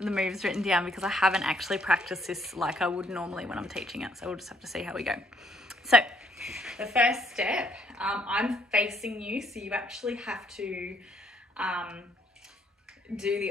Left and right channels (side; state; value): both; normal; correlation 0.68